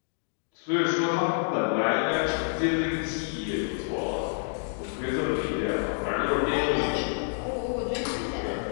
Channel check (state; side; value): silent; right; digital silence